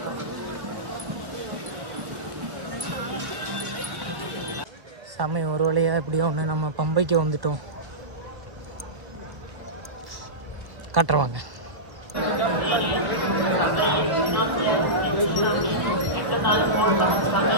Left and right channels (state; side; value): late; left; 1.2 ms